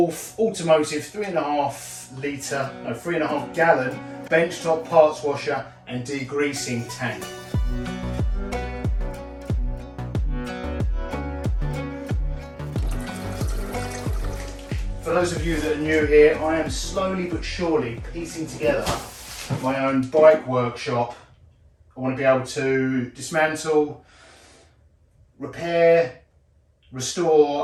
Automotive 3.5 gallon benchtop parts washer and degreasing tank. For those of you that are new here, I am slowly but surely piecing together my own bike workshop. I want to be able to dismantle, repair,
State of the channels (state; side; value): identical; both; correlation 1.00